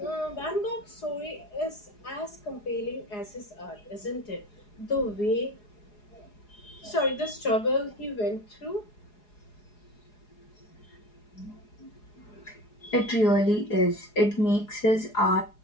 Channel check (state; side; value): late; right; 4.8 ms